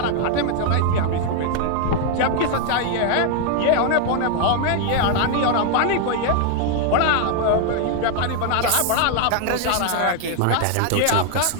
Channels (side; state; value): both; different; correlation 0.00